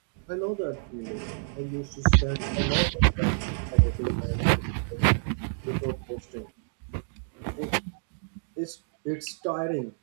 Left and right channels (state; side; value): silent; left; digital silence